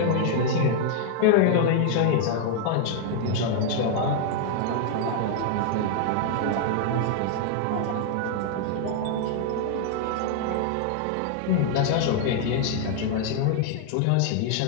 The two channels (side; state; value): both; different; correlation 0.00